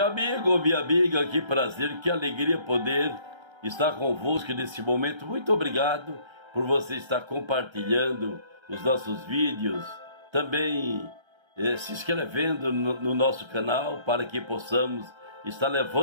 amigo, minha amiga, que prazer, que alegria poder estar convosco nesse momento. Muito obrigado por você estar compartilhando os nossos vídeos, também se inscrevendo no nosso canal para que possamos estar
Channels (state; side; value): late; left; 1.3 ms